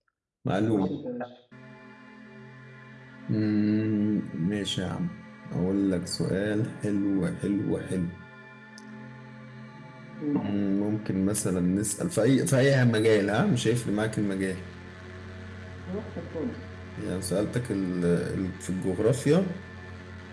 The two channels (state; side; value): identical; both; correlation 1.00